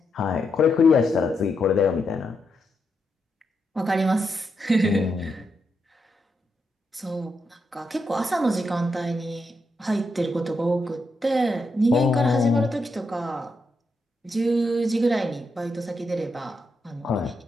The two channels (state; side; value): normal; both; correlation 0.83